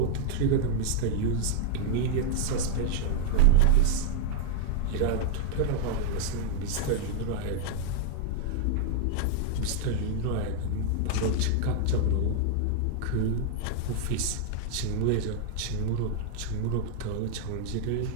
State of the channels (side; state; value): both; different; correlation -0.01